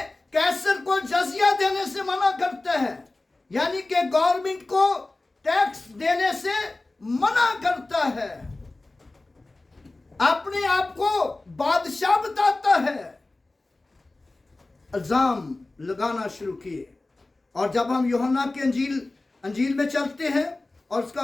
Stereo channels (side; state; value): right; quieter; 3.0 dB